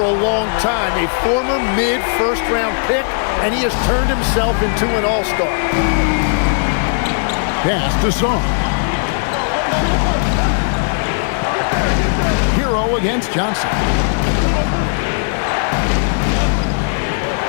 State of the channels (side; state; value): right; silent; 59 dB below the other